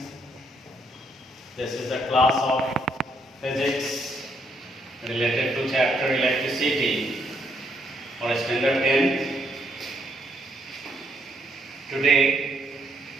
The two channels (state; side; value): normal; both; correlation 0.73